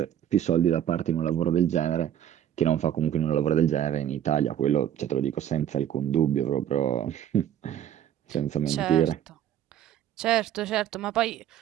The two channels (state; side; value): quieter; left; 10.5 dB